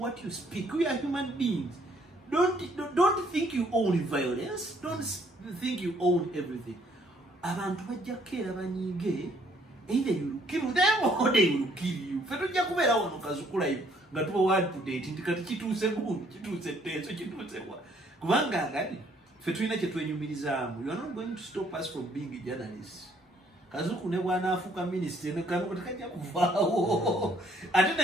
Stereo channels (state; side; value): normal; both; correlation 0.65